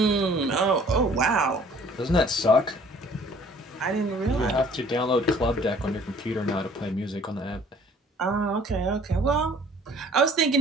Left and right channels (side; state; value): both; normal; correlation 0.54